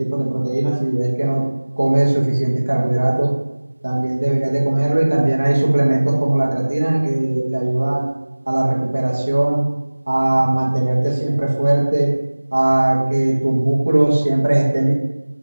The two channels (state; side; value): inverted; both; correlation -1.00